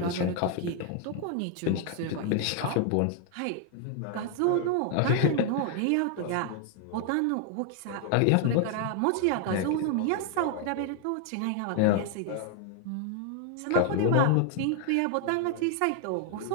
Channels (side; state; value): both; different; correlation 0.00